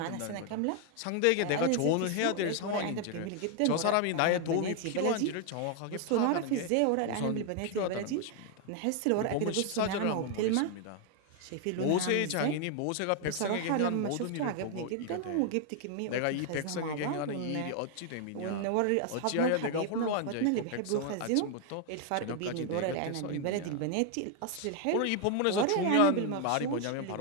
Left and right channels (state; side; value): different; both; correlation 0.00